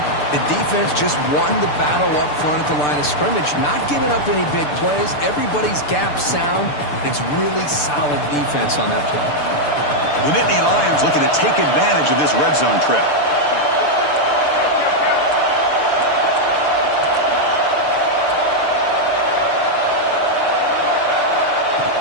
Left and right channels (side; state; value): right; late; 6.8 ms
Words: the defense just won the battle up front at the line of scrimmage, not giving up any big plays. Everybody's gap sound. It's really solid defense on that play. The Nittany Lions looking to take advantage of this red zone trip.